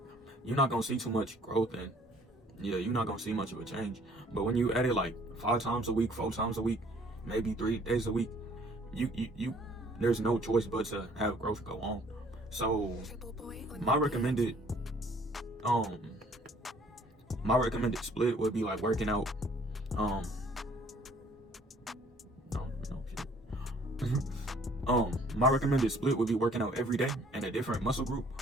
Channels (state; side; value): normal; both; correlation 0.58